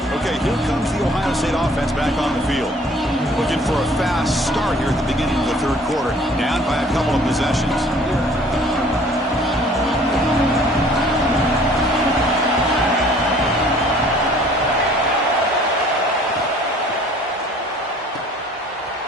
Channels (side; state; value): both; normal; correlation 0.54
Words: Okay, here comes the Ohio State offense back on the field. Looking for a fast start here at the beginning of the third quarter. Down by a couple of possessions.